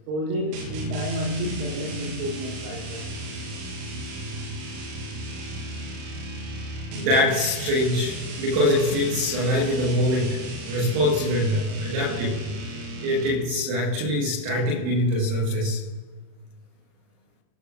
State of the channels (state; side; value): late; left; 39 ms